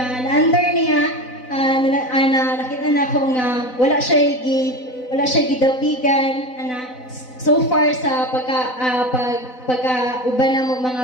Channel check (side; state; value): right; late; 4.0 ms